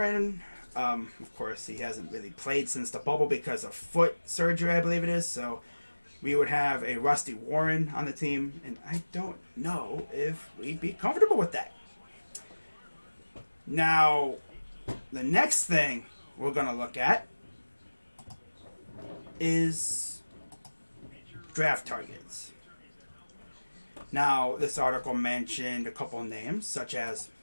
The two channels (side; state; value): both; inverted; correlation -1.00